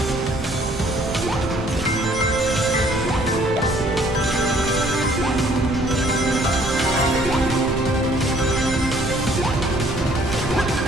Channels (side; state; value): both; normal; correlation 0.60